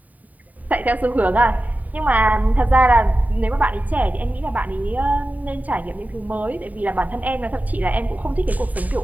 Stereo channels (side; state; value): left; late; 0.075 ms